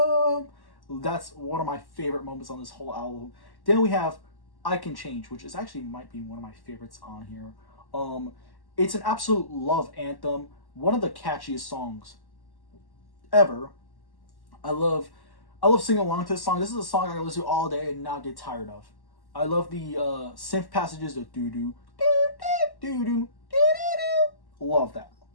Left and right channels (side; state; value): right; late; 1.1 ms